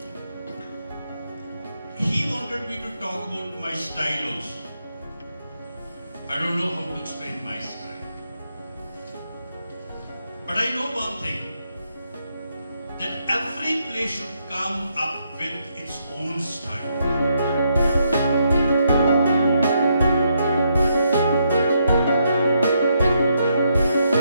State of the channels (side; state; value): both; inverted; correlation -0.77